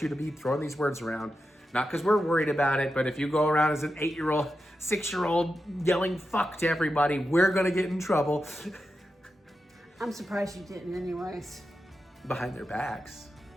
you to be throwing these words around. Not because we're worried about it, but if you go around as an 8-year-old, 6-year-old yelling fuck to everybody, we're gonna get in trouble. I'm surprised you didn't anyways. Behind their backs.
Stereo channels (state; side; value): normal; both; correlation 0.89